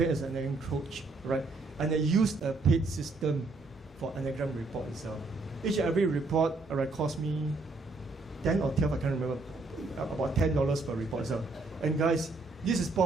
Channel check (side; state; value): left; quieter; 3.4 dB